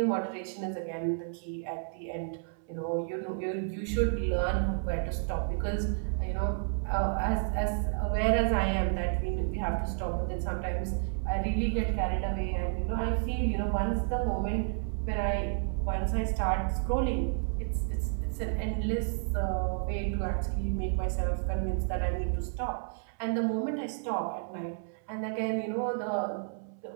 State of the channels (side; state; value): left; silent; 57 dB below the other